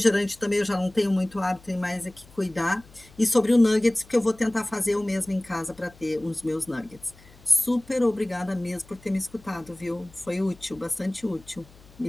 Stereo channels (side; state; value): left; noise; hum, 25 dB below the sound